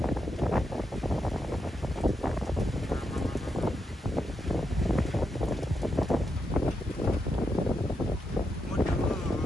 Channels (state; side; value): normal; both; correlation 0.83